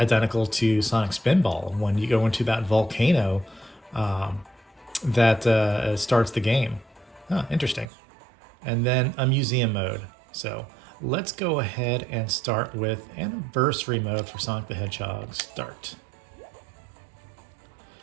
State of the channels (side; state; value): left; drops out; at 7.9 s